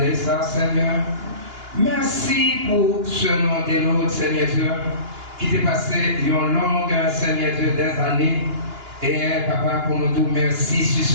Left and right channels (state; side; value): late; left; 2.9 ms